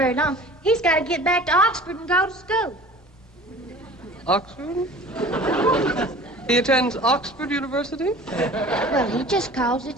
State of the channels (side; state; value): both; normal; correlation 0.43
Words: long. He's got to get back to Oxford and go to school. Oxford? He attends Oxford University? Well, he just calls